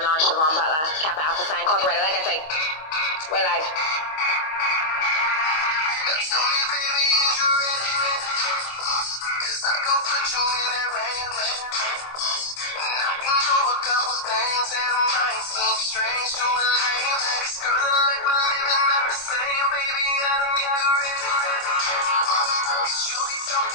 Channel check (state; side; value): late; right; 25 ms